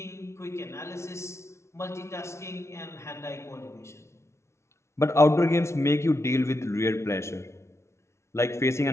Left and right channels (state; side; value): late; right; 0.13 ms